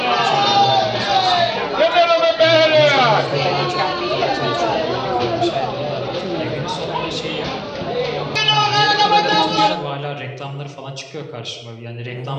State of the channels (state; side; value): identical; both; correlation 1.00